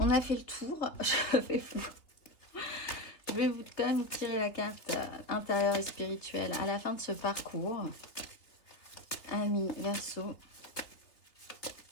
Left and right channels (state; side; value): late; right; 3.3 ms